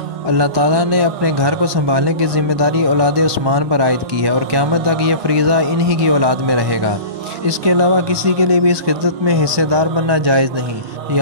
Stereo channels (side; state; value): left; late; 1.2 ms